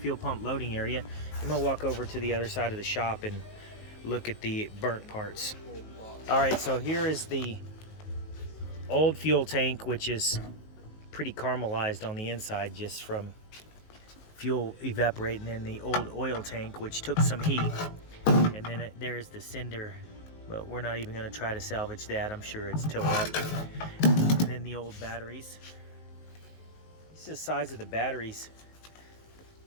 pump loading area. I'm gonna walk over to the other side of the shop and look at the burnt parts. All right, so here is the old fuel tank, which is pretty caramelized on the inside just from fuel evaporating, in the old oil tank, which took some heat. And then there's the cinder, but we're not even gonna try to salvage that. I'm sure it's tore up. And then the old batteries. This is the size of the batteries.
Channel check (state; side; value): late; right; 19 ms